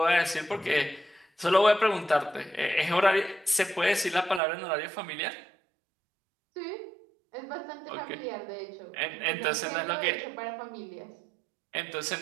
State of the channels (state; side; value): drops out; left; at 4.4 s